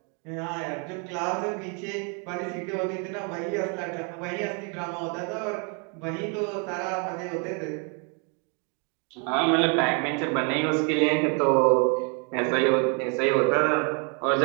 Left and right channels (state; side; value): quieter; left; 36.0 dB